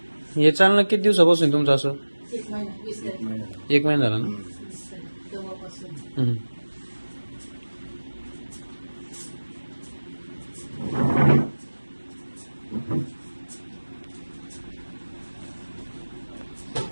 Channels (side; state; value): both; inverted; correlation -1.00